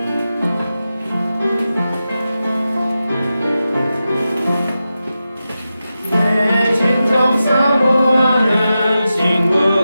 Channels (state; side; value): inverted; both; correlation -0.92